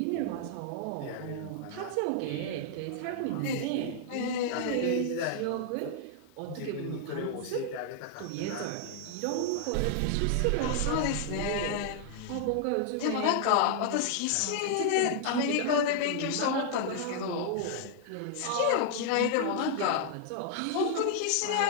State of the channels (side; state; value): both; different; correlation -0.01